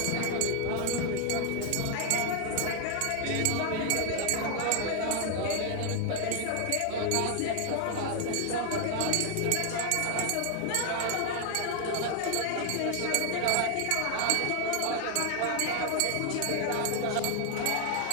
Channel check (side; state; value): both; different; correlation 0.00